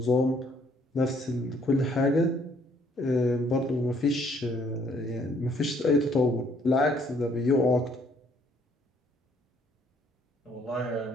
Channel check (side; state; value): both; normal; correlation 0.65